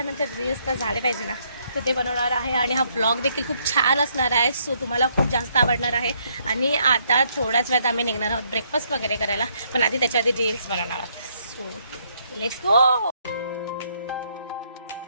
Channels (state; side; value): inverted; both; correlation -0.71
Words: रील्स तर झाले पाहिजे ना. तर ते बनवणार आहे. आणि हा ब्लॉग देखील खूप छान असणार आहे. सो तुम्हाला खूप जास्त आवडणार आहे. आणि आता थोड्याच वेळात आम्ही निघणार आहोत ब्रेकफास्ट वगैरे करायला. पण आधी त्याच्या आधी रील्स बनवणार आहोत. So let's go.